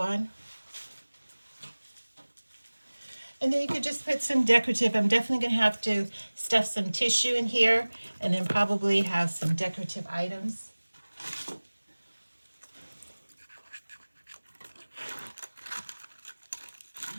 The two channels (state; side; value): inverted; both; correlation -1.00